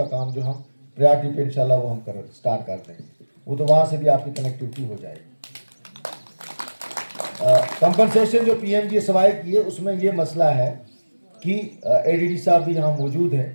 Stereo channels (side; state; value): both; inverted; correlation -1.00